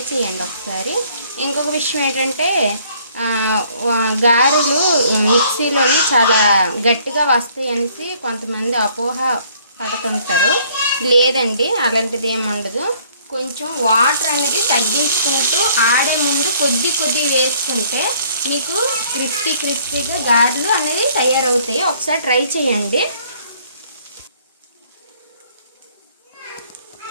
చేయండి ఒకసారి. ఇంకొక విషయం ఏంటంటే గారెలు మిక్సీలోని చాలా గట్టిగా వస్తాయి అనేసి కొంతమంది అపోహ పడుతుంటారు. లేదండి, అలాంటిది ఏమి ఉండదు. కొంచెం వాటర్ అనేది తగ్గించుకుంటూ ఆడే ముందు కొద్ది వేసుకుంటే మీకు క్రిస్పీగా గారెలు అనేది తయారవుతాయి. ఒకసారి ట్రై చేయండి.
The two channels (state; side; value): inverted; both; correlation -0.61